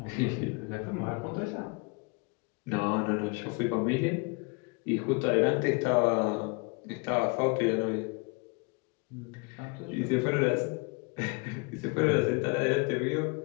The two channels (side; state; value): right; quieter; 31.0 dB